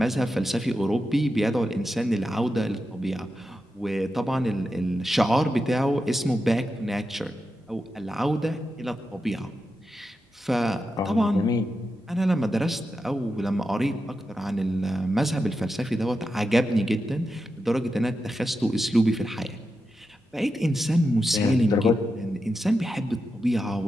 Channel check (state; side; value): normal; both; correlation 0.89